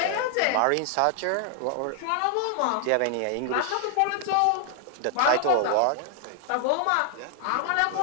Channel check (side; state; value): both; different; correlation 0.00